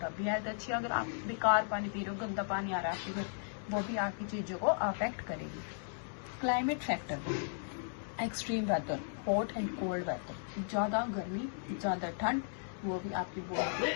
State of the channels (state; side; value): silent; right; digital silence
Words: भी हेल्थ अच्छी है। अगर आप बेकार पानी पी रहे हो, गंदा पानी आ रहा है आपके घर, वो भी आपकी चीज़ों को अफेक्ट करेगी। Climate factor, extreme weather, hot and cold weather, ज़्यादा गर्मी, ज़्यादा ठंड, वो भी आपकी बॉडी